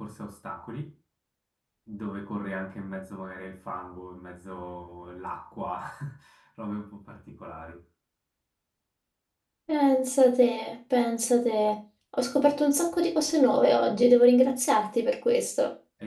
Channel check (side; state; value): both; identical; correlation 1.00